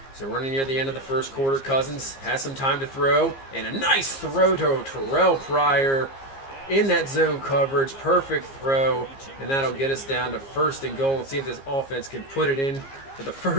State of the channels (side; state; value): right; late; 15 ms